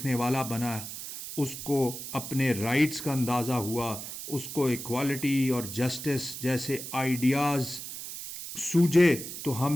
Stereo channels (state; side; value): noise; right; hiss, 9 dB below the sound